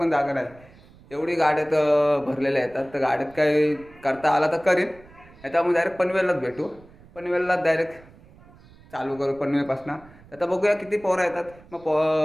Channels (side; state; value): right; noise; rumble, 24 dB below the sound